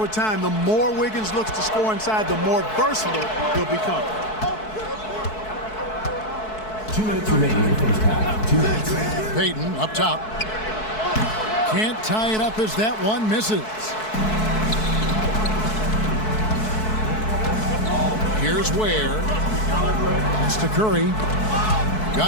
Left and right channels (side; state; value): right; late; 4.6 ms